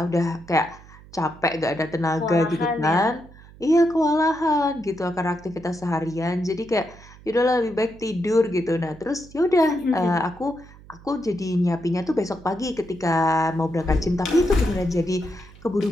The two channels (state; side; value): noise; right; hum, 21 dB below the sound